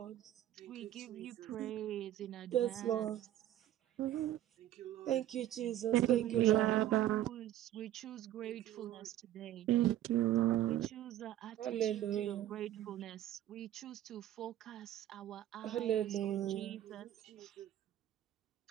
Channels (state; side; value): quieter; left; 12.8 dB